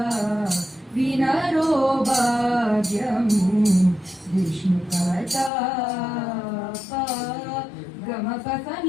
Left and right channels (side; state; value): right; drops out; at 5.5 s